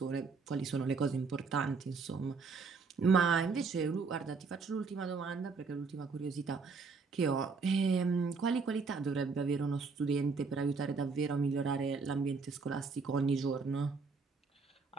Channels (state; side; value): quieter; left; 4.7 dB